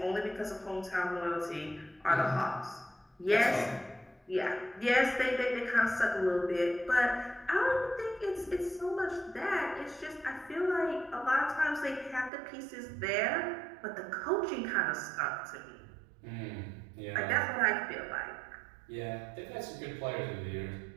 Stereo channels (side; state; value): left; drops out; at 12.3 s